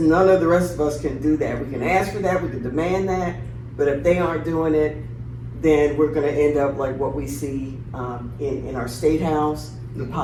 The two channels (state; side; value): identical; both; correlation 1.00